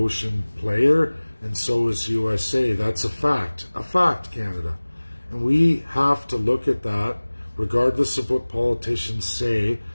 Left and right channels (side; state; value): both; inverted; correlation -1.00